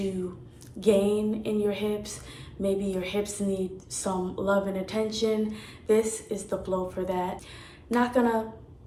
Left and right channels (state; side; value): identical; both; correlation 1.00